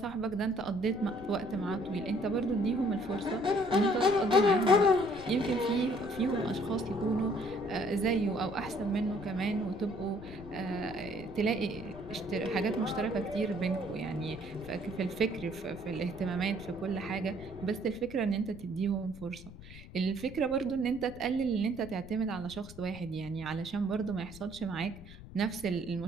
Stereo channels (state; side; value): noise; left; rumble, 16 dB below the sound